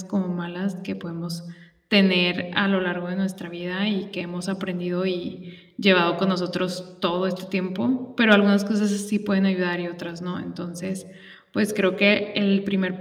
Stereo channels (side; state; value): both; identical; correlation 1.00